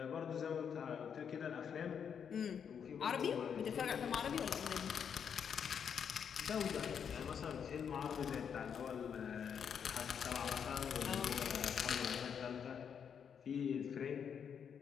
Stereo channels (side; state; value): right; quieter; 7.5 dB